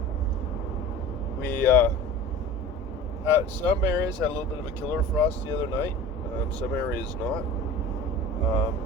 Some areas had a little bit of a killer frost the other night. Some areas not.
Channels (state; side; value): normal; both; correlation 0.38